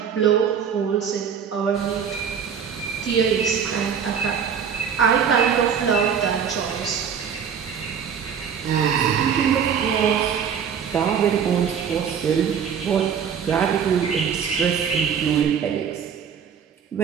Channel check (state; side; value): quieter; left; 7.4 dB